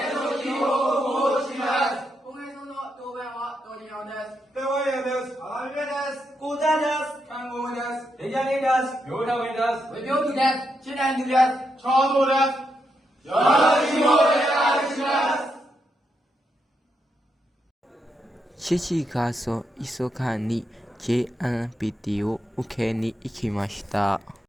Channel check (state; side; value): normal; both; correlation 0.82